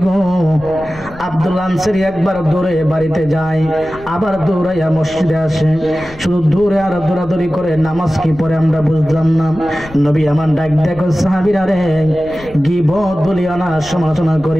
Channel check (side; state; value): left; noise; rumble, 19 dB below the sound